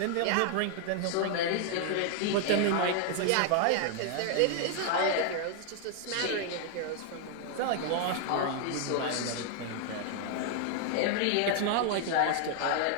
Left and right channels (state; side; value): different; both; correlation 0.00